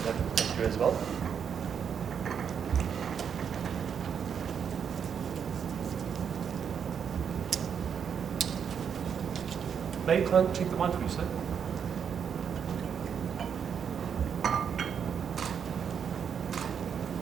that will come through as well. May I check the wine for you, sir?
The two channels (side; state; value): left; quieter; 7.4 dB